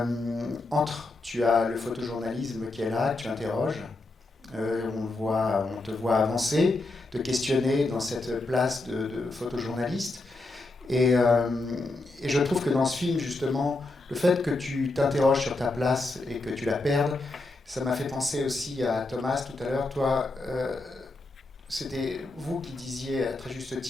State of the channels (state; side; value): quieter; right; 3.0 dB